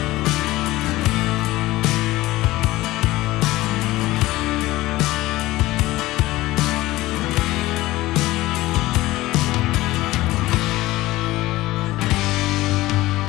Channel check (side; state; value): right; quieter; 17.8 dB